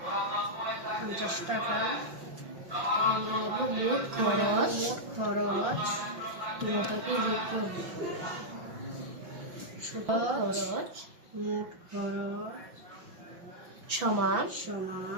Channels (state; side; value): late; left; 5.6 ms